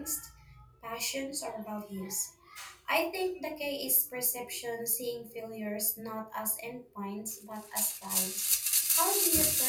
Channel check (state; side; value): identical; both; correlation 1.00